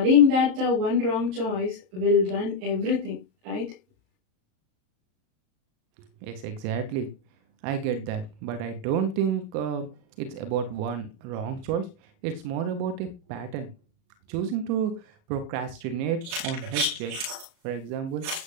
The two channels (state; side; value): late; left; 37 ms